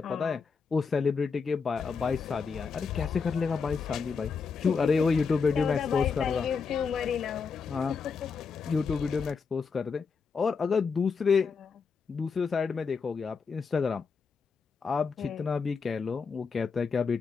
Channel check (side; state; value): right; quieter; 5.3 dB